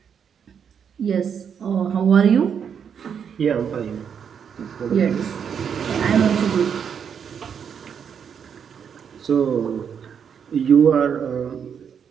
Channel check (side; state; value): left; quieter; 7.5 dB